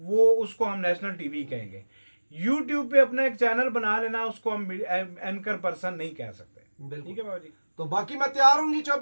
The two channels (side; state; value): both; inverted; correlation -1.00